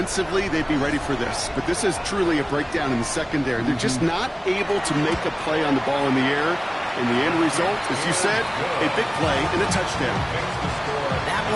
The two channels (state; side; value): identical; both; correlation 1.00